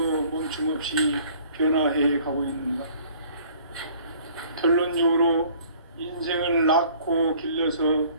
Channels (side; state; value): both; inverted; correlation -0.54